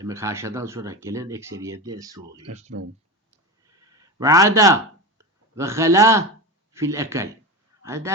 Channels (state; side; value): normal; both; correlation 0.23